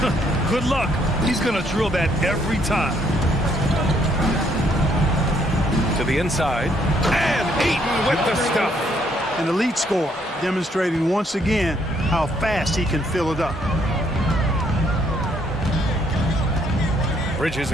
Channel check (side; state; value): both; normal; correlation 0.69